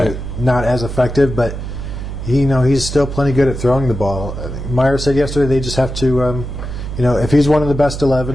not as effective. But, he's still plenty good at throwing the ball. Meyer said yesterday they just have to... if he's one of the best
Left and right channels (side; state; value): right; noise; hum, 7 dB below the sound